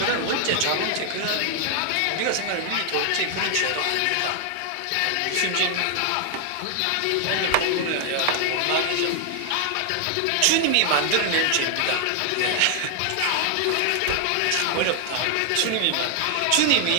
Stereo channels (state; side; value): different; both; correlation 0.00